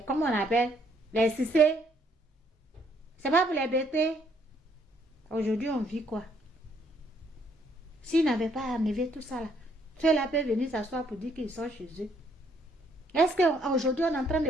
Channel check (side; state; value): both; normal; correlation 0.68